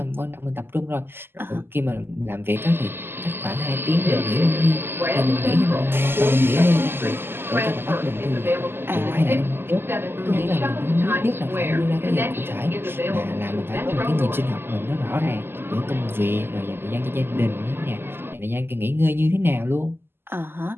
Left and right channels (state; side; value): late; left; 0.11 ms